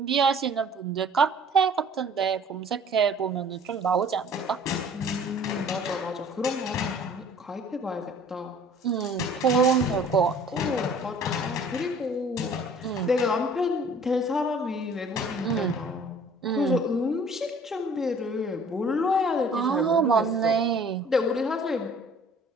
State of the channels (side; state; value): both; normal; correlation 0.51